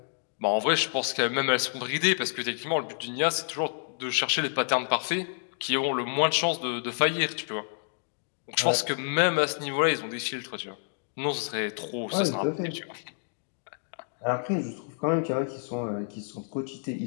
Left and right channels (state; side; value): silent; right; digital silence